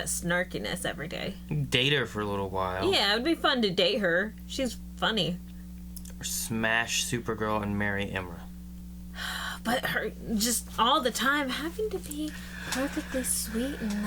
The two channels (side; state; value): both; identical; correlation 1.00